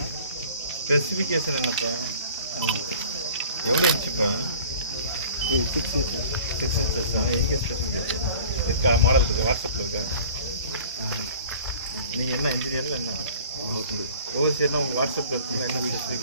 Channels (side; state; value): both; inverted; correlation -0.46